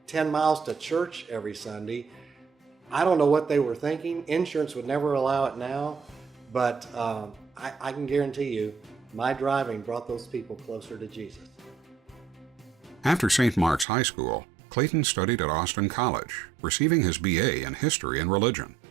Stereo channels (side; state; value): left; drops out; at 13.9 s